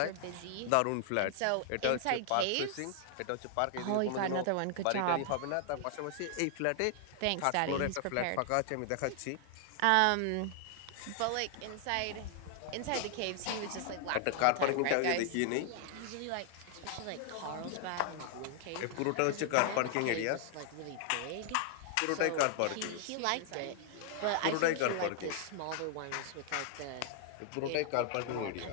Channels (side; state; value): both; different; correlation 0.00